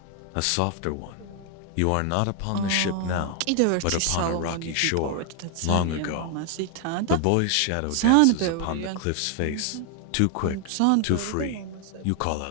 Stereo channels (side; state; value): both; different; correlation 0.00